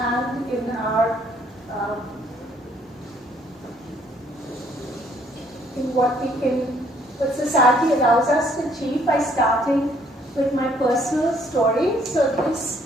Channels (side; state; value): both; normal; correlation 0.65